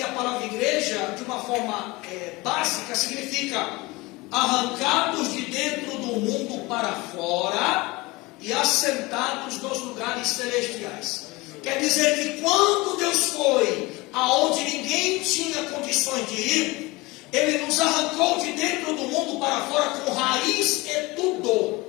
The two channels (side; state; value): right; quieter; 22.7 dB